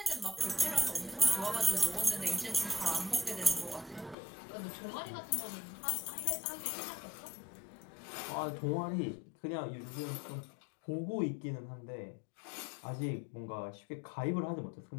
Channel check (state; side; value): drops out; right; at 4.2 s